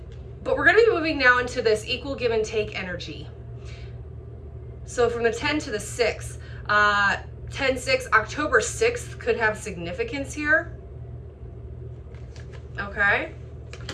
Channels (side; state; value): both; identical; correlation 1.00